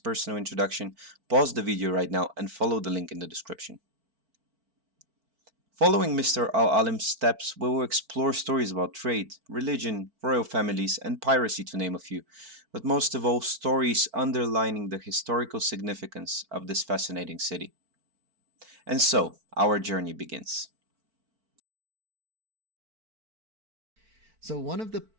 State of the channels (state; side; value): late; left; 4.5 ms